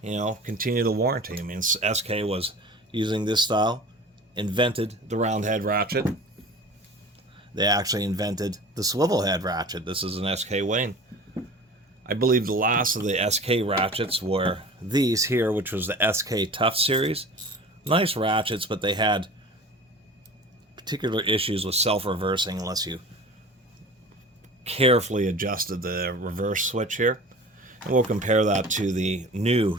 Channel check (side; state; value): both; normal; correlation 0.39